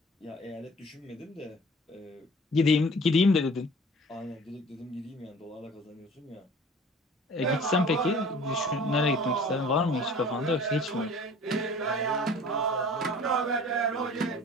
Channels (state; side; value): normal; both; correlation 0.47